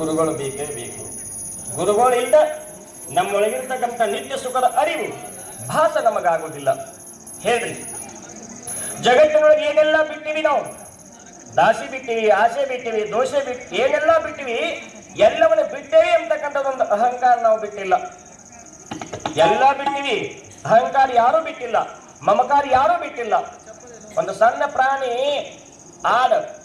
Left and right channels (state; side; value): identical; both; correlation 1.00